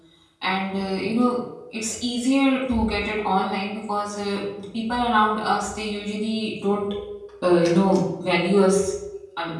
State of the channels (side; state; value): both; identical; correlation 1.00